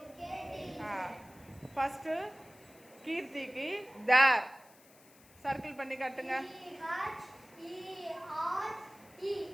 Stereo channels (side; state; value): left; noise; hiss, 25 dB below the sound